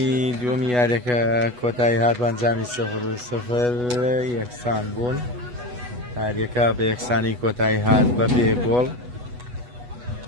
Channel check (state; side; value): late; left; 8.2 ms